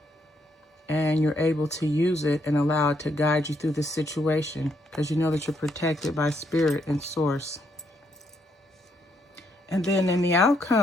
and you're able to use it and allow it to guide you through this situation because you know that you're protected by spirit and source. And then in the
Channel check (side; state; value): both; normal; correlation 0.74